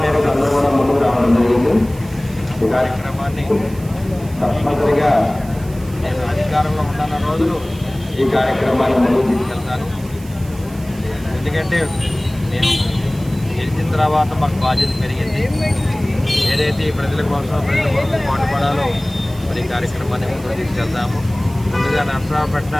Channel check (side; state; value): right; noise; hiss, 21 dB below the sound